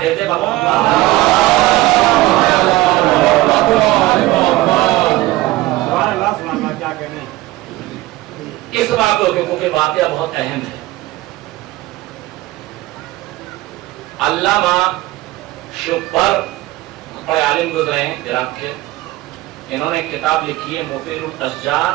دیتے بابا. کیا کہنے اس واقعے کے کیونکہ واقعہ بہت اہم ہے. علامہ شبر بڑے عالم گزرے ہیں عراق کے، انہوں نے کتاب لکھی ہے مفید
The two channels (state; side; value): quieter; left; 17.8 dB